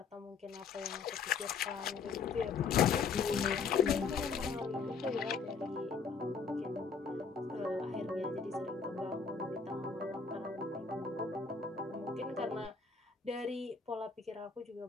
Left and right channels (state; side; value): quieter; right; 5.3 dB